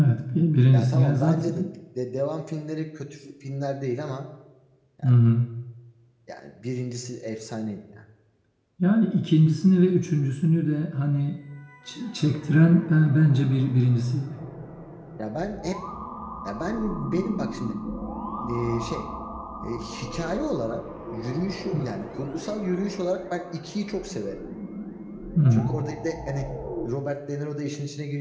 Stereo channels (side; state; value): both; identical; correlation 1.00